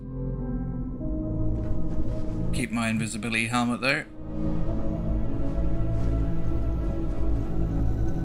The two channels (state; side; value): identical; both; correlation 1.00